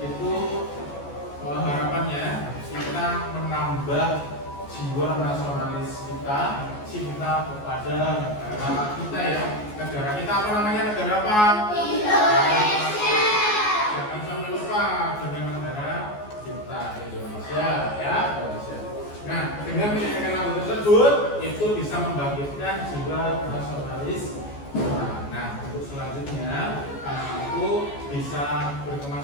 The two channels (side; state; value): right; late; 14 ms